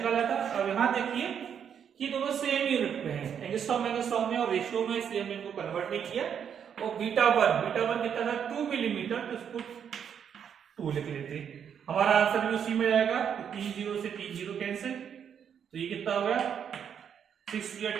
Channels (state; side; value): quieter; left; 8.0 dB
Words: था। अब यहां देखिए कि दोनों सेम यूनिट में है, एंगस्ट्रॉम में और रेशियो में, इसलिए हमने इनको कन्वर्ट नहीं किया। और बीटा 1 कितना था? 2 मिलीमीटर, तो इसको 2 लिख लेते हैं। हमारा आंसर भी उसी में जाएगा। तो 3 0 से 3 0 कैंसिल, तो ये कितना हो गया? 6